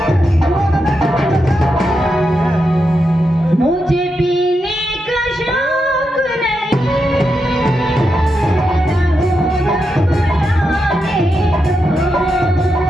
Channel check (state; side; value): normal; both; correlation 0.86